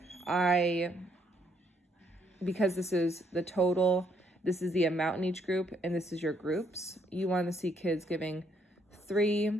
Because this is the total, this is the amount in each group, and this is your groups. You want to see kids giving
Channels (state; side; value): normal; both; correlation 0.71